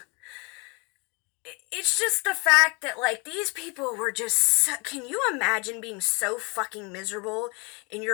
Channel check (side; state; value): right; quieter; 30.3 dB